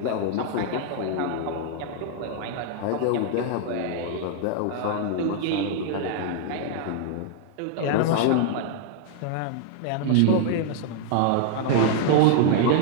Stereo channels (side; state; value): both; different; correlation 0.00